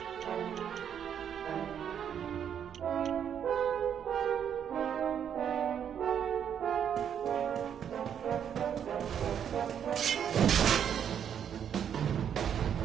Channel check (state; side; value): quieter; left; 8.6 dB